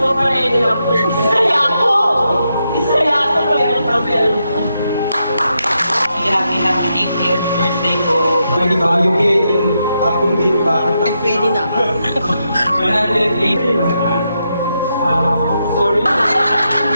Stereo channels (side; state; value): both; inverted; correlation -0.83